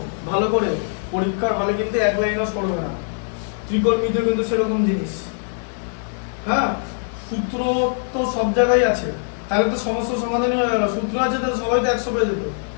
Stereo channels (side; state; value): right; silent; 60 dB below the other